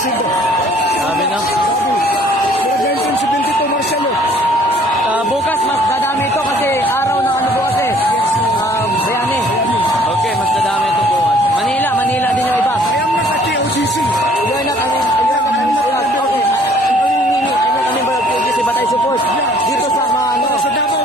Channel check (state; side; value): normal; both; correlation 0.58